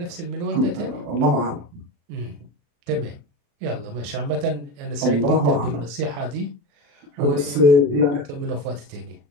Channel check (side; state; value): left; late; 35 ms